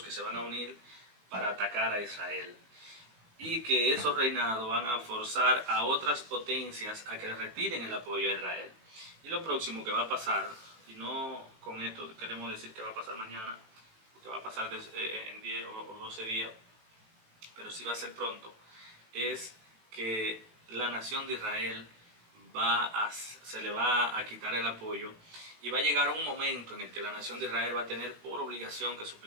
que se van a unir para atacar a Israel. Y que esos reinados van a forzar a otras potencias a que retiren el apoyo a Israel. Y lo próximo que va a pasar, y no con esto queremos decir que va a pasar mañana, que va a pasar en 10 o 12 días, pero sí va a ser pronto, es que la nación de Israel se le va a quitar el apoyo y va a llegar un momento en el que la nación de Israel va a tener por obligación que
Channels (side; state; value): left; late; 18 ms